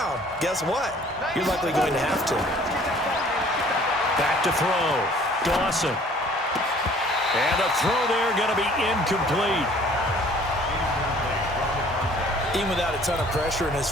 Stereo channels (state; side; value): normal; both; correlation 0.54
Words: guess what? You're likely going to have to. Back to throw. Dawson. And the throw there going to be incomplete. Even without a ton of pressure in his